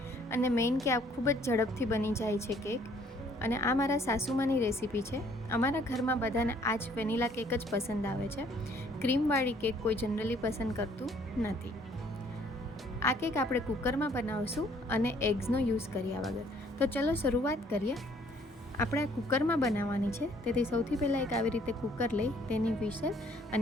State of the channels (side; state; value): both; normal; correlation 0.62